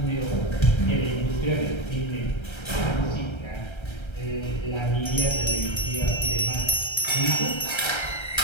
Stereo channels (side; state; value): right; late; 1.3 ms